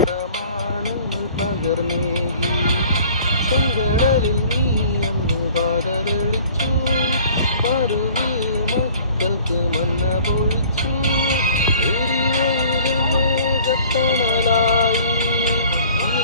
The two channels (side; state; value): both; inverted; correlation -0.50